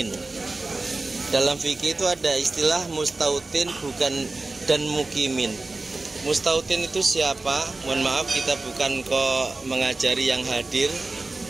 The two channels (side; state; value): left; quieter; 3.3 dB